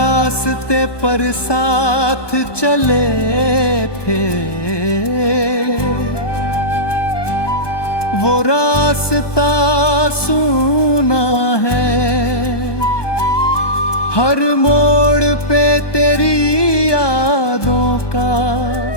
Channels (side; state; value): right; late; 1.2 ms